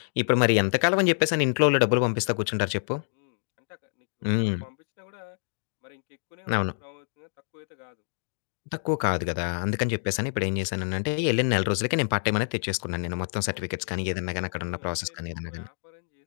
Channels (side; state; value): right; silent; digital silence